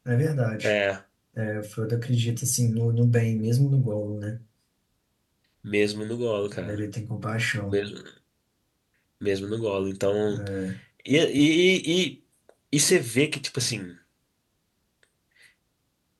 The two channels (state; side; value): identical; both; correlation 1.00